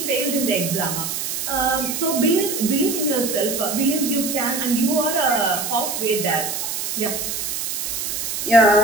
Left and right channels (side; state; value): right; noise; hiss, 3 dB below the sound